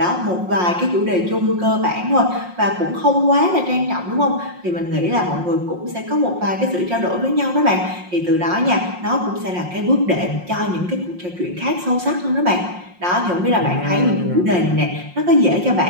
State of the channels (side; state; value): left; late; 5.6 ms